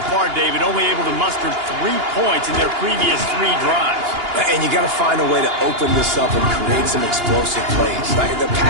far, David, only able to muster 3 points in their previous 3 drives. And you got to find a way to open this up and create some explosive plays. Like the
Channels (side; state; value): left; late; 2.9 ms